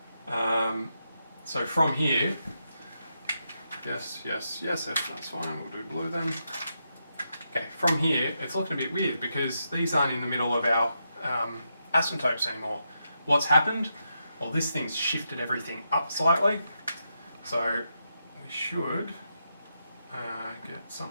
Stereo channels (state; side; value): inverted; both; correlation -0.84